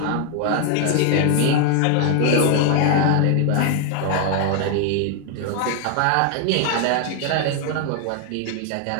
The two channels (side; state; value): both; different; correlation 0.00